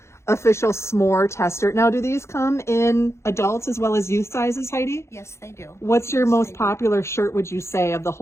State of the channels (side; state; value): right; late; 0.13 ms